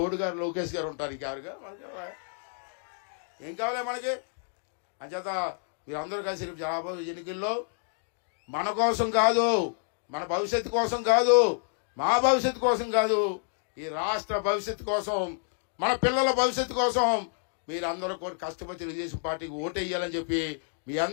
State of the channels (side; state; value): right; silent; digital silence